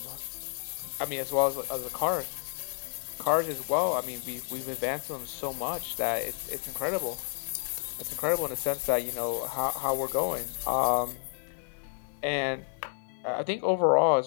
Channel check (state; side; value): silent; right; digital silence